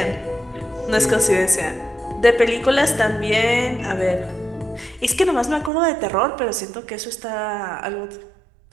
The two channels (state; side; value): drops out; left; at 5.7 s